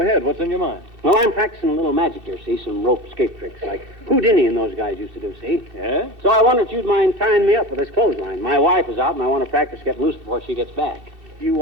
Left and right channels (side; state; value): left; late; 2.6 ms